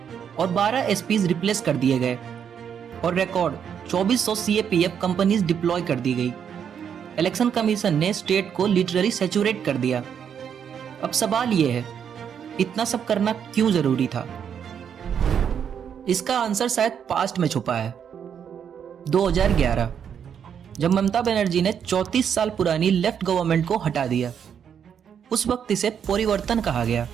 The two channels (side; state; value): left; quieter; 8.0 dB